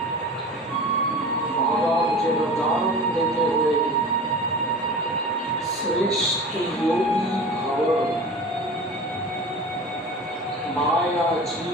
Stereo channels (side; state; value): both; normal; correlation 0.36